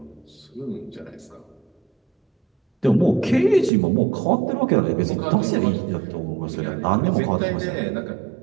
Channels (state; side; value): drops out; left; at 3.7 s